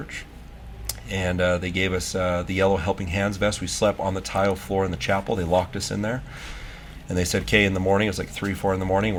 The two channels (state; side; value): identical; both; correlation 1.00